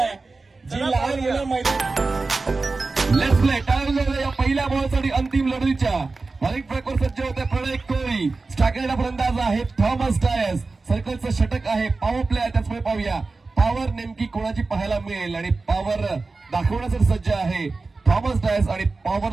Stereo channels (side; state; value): left; quieter; 3.8 dB